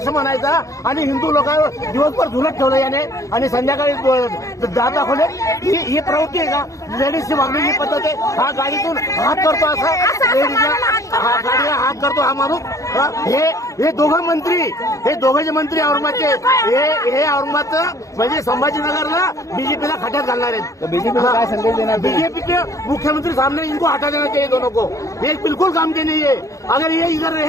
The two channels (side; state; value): right; late; 0.16 ms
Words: म्हणायचा आणि हिंदू लोकांवर दिवसभर झुलत ठेवलं याने आणि संध्याकाळी जात दाखवले. ही प्रवृत्ती आहे का? लेडीजची वागण्याची पद्धत आहे. हा गाडीतून हात करतो असा लेडीजला गाडीला हात करतो हा माणूस. हे दोघं मंत्री, हे दोघे मंत्री औरंगाबादचे, हे औरंगाबादचं म्हणजे संभाजीनगरला बीजेपीला खड्यात घालणार आहेत. बीजेपीला काय संदेश देणार? बीजेपी के मुख्यमंत्री सामने इनको हटा देना चाहिए दोनों को. ये बिल्कुल काम के नहीं है. अगर ये इधर